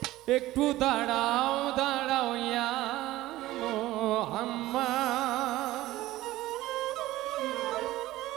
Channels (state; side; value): quieter; left; 16.7 dB